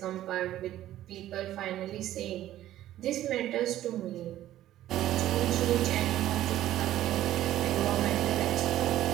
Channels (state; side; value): quieter; left; 13.4 dB